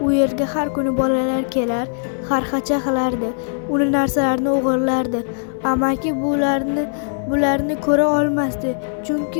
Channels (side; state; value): right; silent; digital silence